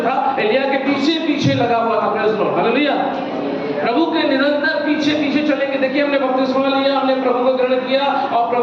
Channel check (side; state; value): both; identical; correlation 1.00